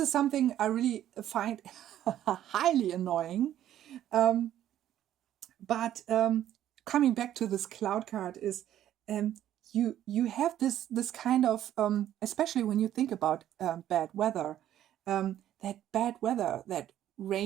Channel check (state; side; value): quieter; left; 11.8 dB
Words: is something I really find highly annoying. But coming back to this cloud card is you have this kind of especially when you think about bad weather, that bad weather, that